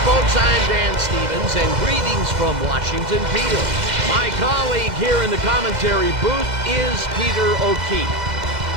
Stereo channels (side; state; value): left; late; 2.0 ms